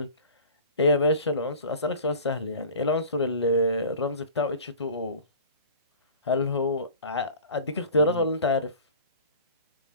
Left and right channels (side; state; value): both; inverted; correlation -0.41